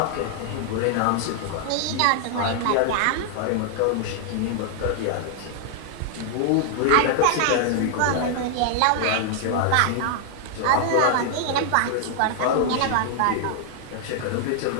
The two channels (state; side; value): different; both; correlation 0.00